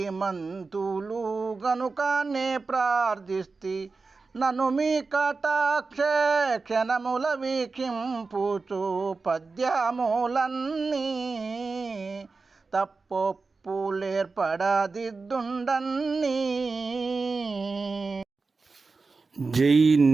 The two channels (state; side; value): quieter; left; 4.2 dB